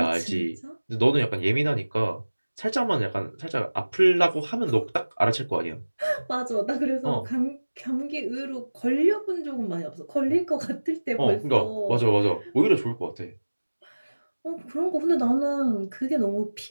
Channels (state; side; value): inverted; both; correlation -1.00